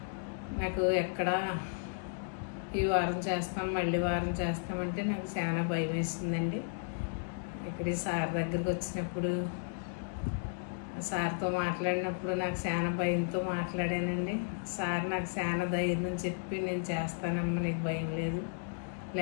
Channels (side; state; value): right; silent; digital silence